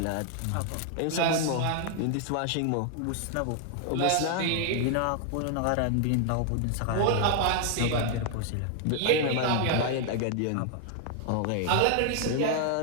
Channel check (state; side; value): different; both; correlation 0.00